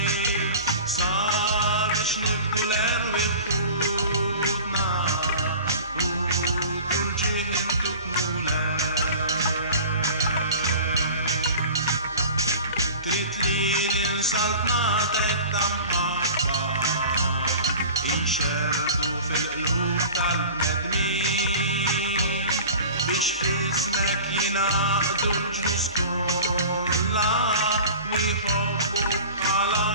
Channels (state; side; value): inverted; both; correlation -0.39